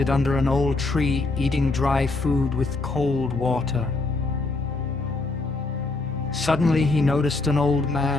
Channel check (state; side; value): quieter; right; 3.4 dB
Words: under an old tree, eating dry food with cold water. Suddenly he noticed an old